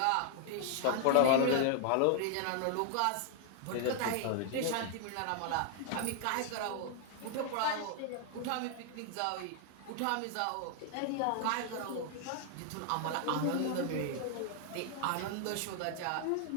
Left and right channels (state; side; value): different; both; correlation 0.00